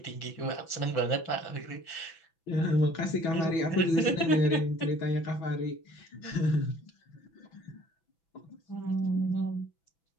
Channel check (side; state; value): right; late; 6.0 ms